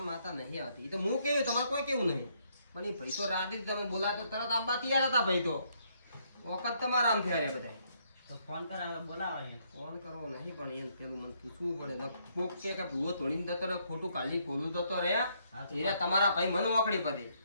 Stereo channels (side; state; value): both; inverted; correlation -0.72